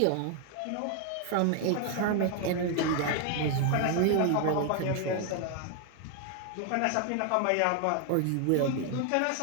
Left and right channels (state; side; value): different; both; correlation 0.00